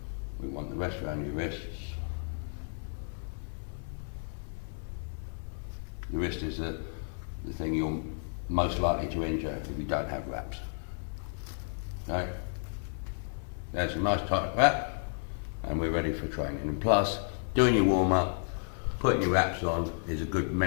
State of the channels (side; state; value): right; silent; 56 dB below the other